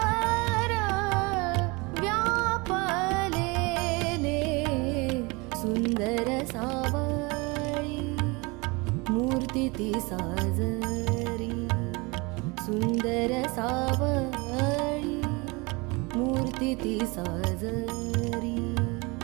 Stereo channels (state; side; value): quieter; left; 26.7 dB